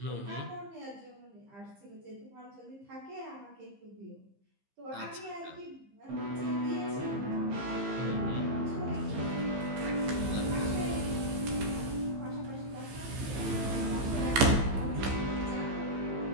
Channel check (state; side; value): late; left; 15 ms